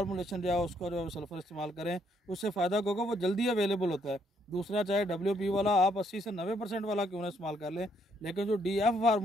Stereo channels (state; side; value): normal; both; correlation 0.71